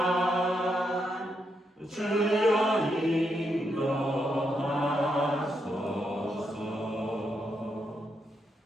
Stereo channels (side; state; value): both; normal; correlation 0.81